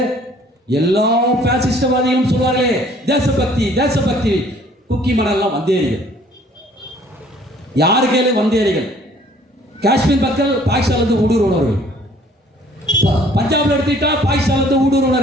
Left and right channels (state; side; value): normal; both; correlation 0.57